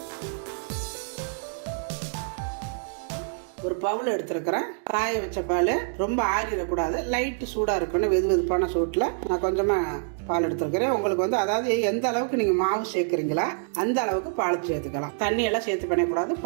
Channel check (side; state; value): left; silent; digital silence